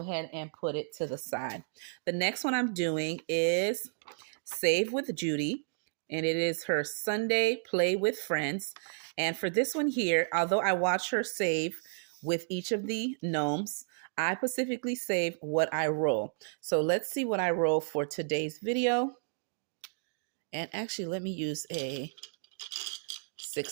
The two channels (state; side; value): silent; left; digital silence